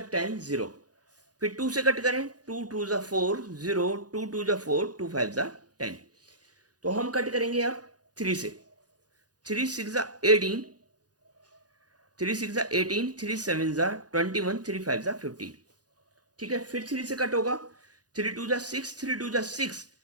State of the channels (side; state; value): left; late; 0.68 ms